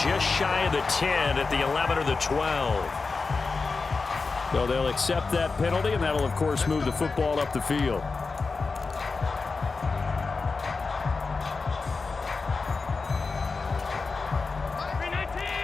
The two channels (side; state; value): right; quieter; 4.3 dB